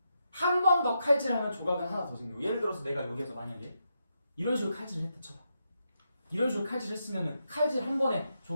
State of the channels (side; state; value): both; inverted; correlation -0.83